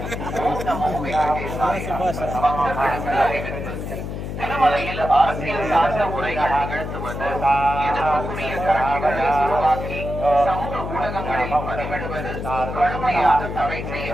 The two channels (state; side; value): noise; left; hum, 6 dB below the sound